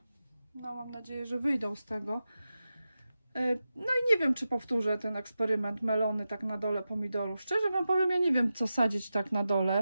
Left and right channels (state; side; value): inverted; both; correlation -0.92